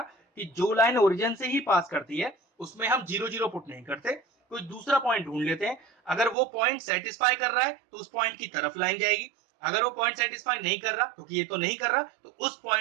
जो लाइन ओरिजिन से ही पास करती है उसमें हम 0 0 पुट नहीं करते, कोई दूसरा पॉइंट ढूंढ लेते हैं। अगर वो पॉइंट सेटिस्फाई कर रहा है तो उस पॉइंट की तरफ लाइन जाएगी, अगर वो पॉइंट सेटिस्फाई नहीं कर रहा, क्योंकि ये तो नहीं कर रहा, तो उस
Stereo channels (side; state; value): left; drops out; at 6.4 s